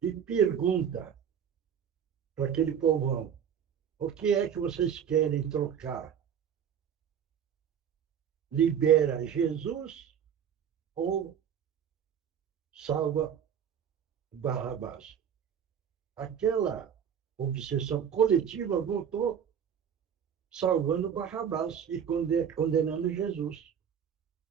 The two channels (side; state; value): left; quieter; 8.3 dB